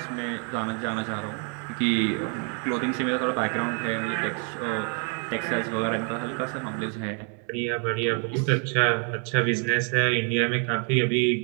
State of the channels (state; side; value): quieter; left; 39.9 dB